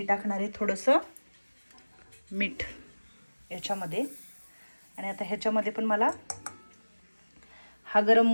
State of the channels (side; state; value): both; inverted; correlation -1.00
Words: टाकणार आहे थोडंसं मीठ याच्यामध्ये. आणि आता ह्याच्यामध्ये पण मला हा गरम